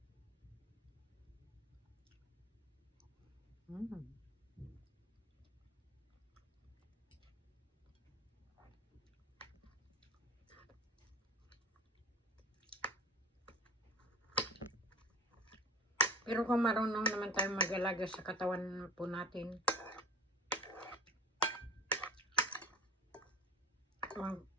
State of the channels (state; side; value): normal; both; correlation 0.38